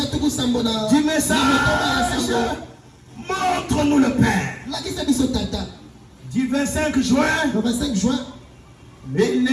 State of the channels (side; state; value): both; identical; correlation 1.00